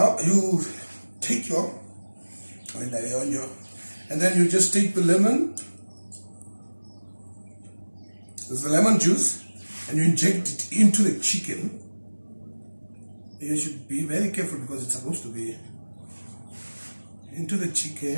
you take your, and then you just take the lemon, there's the lemon juice, and you inject it into the chicken. You should be very careful because it's supposed to be into the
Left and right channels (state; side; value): inverted; both; correlation -1.00